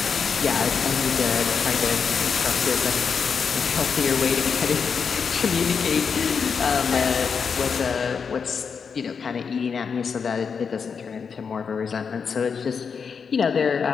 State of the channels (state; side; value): quieter; right; 6.1 dB